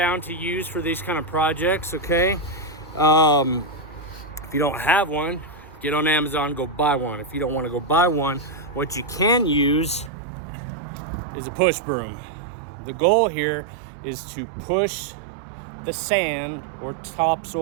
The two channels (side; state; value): left; drops out; at 10.1 s